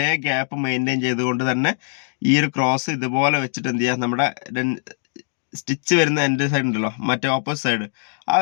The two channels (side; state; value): right; silent; digital silence